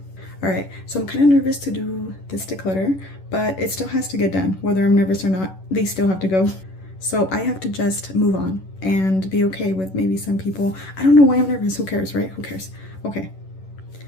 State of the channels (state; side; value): late; right; 11 ms